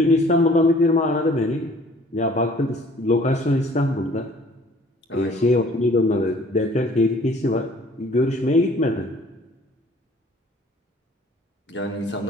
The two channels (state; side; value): normal; both; correlation 0.54